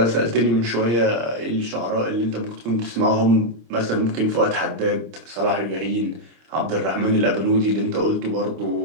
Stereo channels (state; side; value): late; left; 26 ms